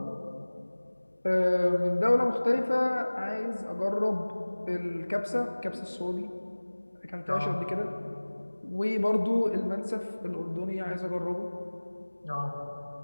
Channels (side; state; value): both; inverted; correlation -1.00